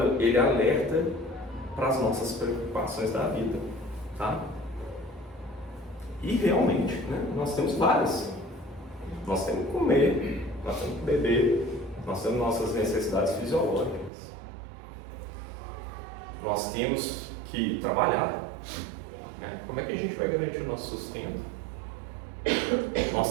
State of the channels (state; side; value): drops out; left; at 14.1 s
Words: ele alerta para as nossas preocupações da vida, tá? E realmente, né, nós temos várias. Nós temos que comer, nós temos que beber, nós temos nossas necessidades fisiológicas. Nós temos que trabalhar, né? Como é que a gente vai garantir o nosso sustento?